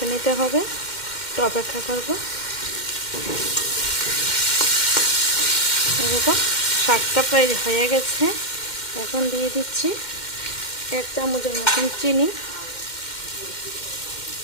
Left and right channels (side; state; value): right; late; 2.1 ms